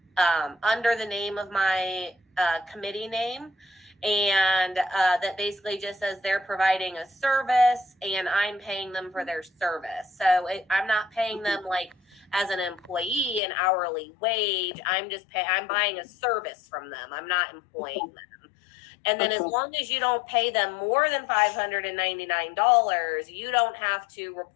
the name of my committee name. And that basically just says they're providing a service and I'm paying them for their service. So I'm not paying them like as an employee an hourly wage. I'm buying a service from them. I'm not employing them. And then as long as you don't pay them more than $599, you don't have to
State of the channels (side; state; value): right; drops out; at 13.4 s